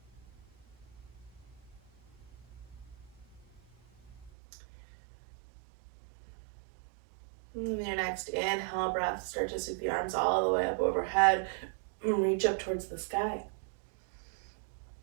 And your next inhale breath, start to sweep the arms all the way up overhead and reach up towards the sky.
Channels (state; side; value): drops out; left; at 4.3 s